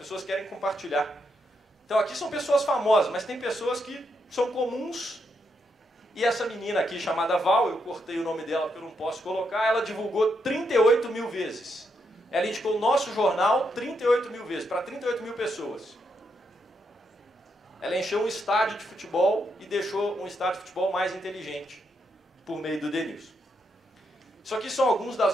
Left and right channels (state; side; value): normal; both; correlation 0.80